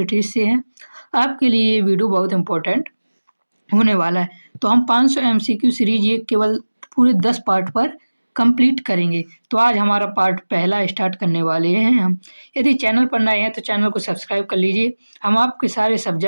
से हैं आपके लिए ये वीडियो बहुत इंपॉर्टेंट होने वाला है। तो हम 500 एमसीक्यू सीरीज ये केवल पूरे 10 पार्ट पर कंप्लीट करेंगे। तो आज हमारा पार्ट पहला स्टार्ट करने वाले हैं हम। यदि चैनल पर नए हैं तो चैनल को सब्सक्राइब कर लीजिए। हम आपके सारे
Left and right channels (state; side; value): inverted; both; correlation -1.00